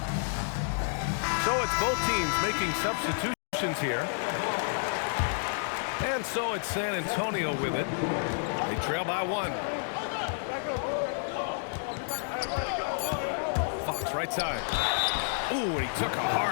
So it's both teams making substitutions here. And so it's San Antonio with it. They trail by 1. Fox right side. Ooh, and he took a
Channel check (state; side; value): silent; right; digital silence